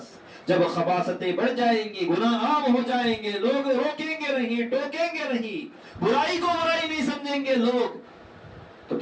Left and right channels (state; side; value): identical; both; correlation 1.00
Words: جب خباثتیں بڑھ جائیں گی، گناہ عام ہو جائیں گے، لوگ روکیں گے نہیں، ٹوکیں گے نہیں، برائی کو برائی نہیں سمجھیں گے لوگ، تو